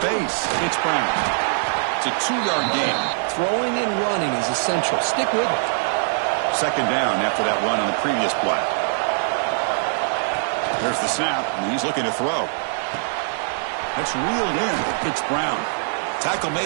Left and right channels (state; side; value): silent; left; digital silence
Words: It's Brown. It's a 2-yard gain. Throwing and running is essential. Stick with it. Second down after that run on the previous play. There's the snap, and he's looking to throw. That's reeled in. It's Brown. Tackle